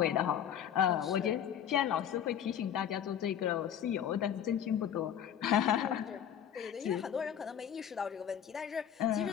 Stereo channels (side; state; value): right; quieter; 9.4 dB